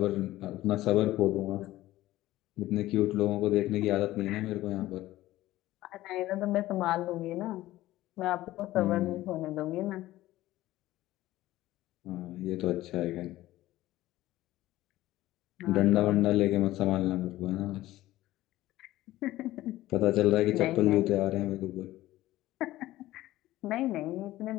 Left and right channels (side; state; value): right; quieter; 16.0 dB